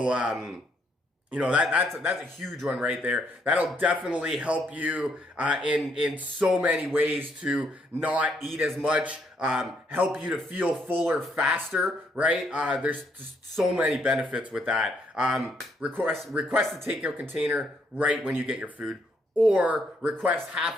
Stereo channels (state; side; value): normal; both; correlation 0.72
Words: that's a huge one right there. That'll definitely help you in so many ways to not eat as much, help you to feel fuller faster, right? There's just so many benefits with that. Request a takeout container right when you get your food, or request half